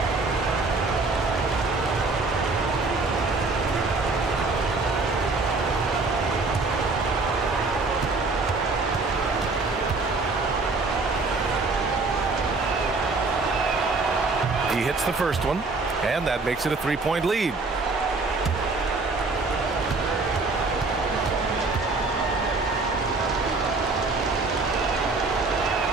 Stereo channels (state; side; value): quieter; left; 3.7 dB